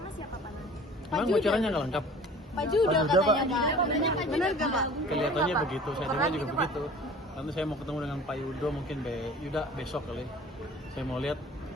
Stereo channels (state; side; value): normal; both; correlation 0.45